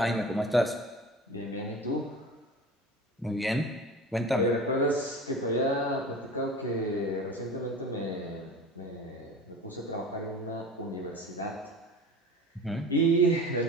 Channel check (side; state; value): both; normal; correlation 0.36